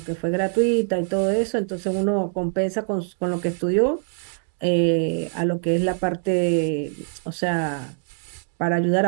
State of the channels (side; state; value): left; silent; digital silence